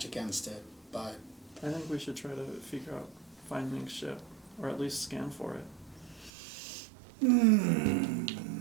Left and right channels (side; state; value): left; drops out; at 6.3 s